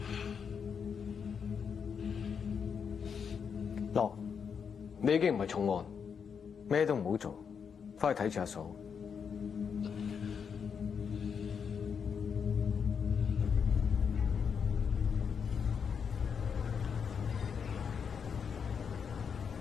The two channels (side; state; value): right; quieter; 6.7 dB